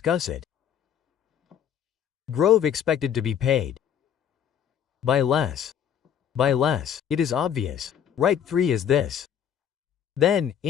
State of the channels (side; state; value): right; quieter; 8.9 dB